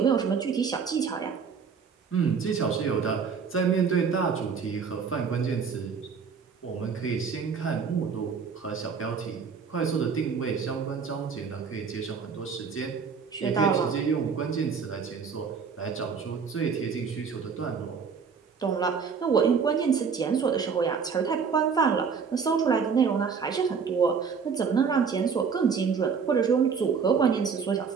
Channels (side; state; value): left; quieter; 6.0 dB